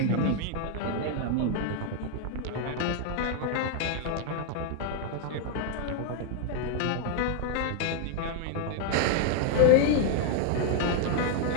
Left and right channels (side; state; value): both; different; correlation 0.00